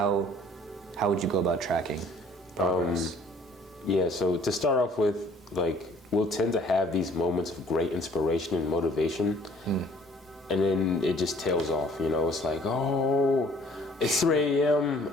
would you go about tracking progress? Yeah, so to start off with, like, we'll tend to have these moments of great inspiration and motivation, and then it just tails off, you know? It's like, oh, it's 3 a.m.,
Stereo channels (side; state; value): both; normal; correlation 0.56